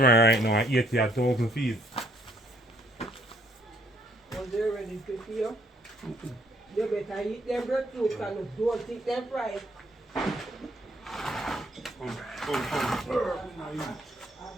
right now at 80,000 feet. Was they ready to feel? You better eat them breadfruit and don't eat them fried. I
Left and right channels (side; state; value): both; normal; correlation 0.66